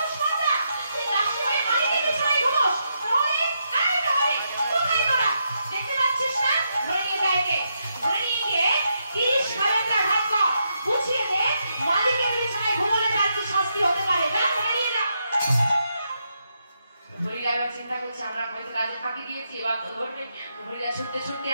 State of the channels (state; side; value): inverted; both; correlation -0.82